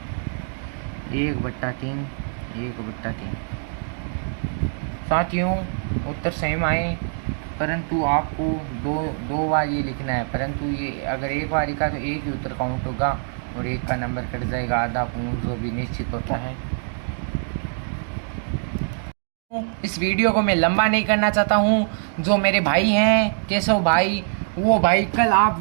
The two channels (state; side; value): silent; left; digital silence